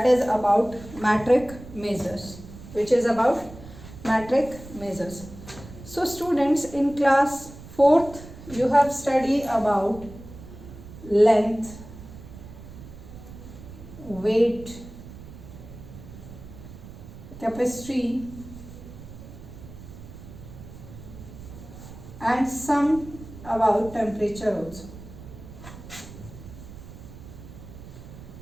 is about metric measures, which is about metric measures. So, students, in class 4th, you have studied about length, weight, capacity, and some about temperature also.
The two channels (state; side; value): noise; right; rumble, 15 dB below the sound